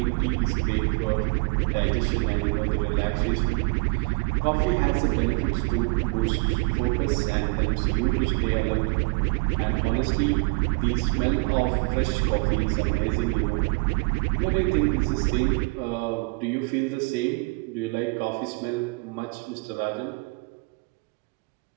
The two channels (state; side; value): quieter; left; 30.0 dB